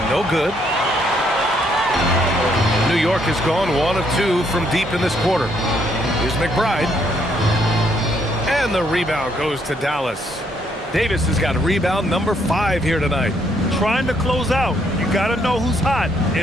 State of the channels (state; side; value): normal; both; correlation 0.71